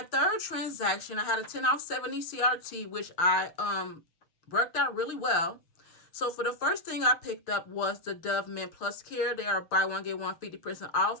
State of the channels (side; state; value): right; late; 6.4 ms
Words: third transaction, I had a 10 off 70 CRT, which I worked out really well. So for the first thing I picked up was the Dove Men Plus Care. They are buy 1 get 1 50%